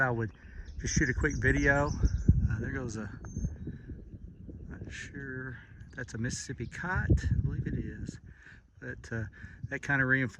I would just shoot a quick video. There goes a, not sure, that's a Mississippi cot, I believe it is, but that kind of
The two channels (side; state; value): both; identical; correlation 1.00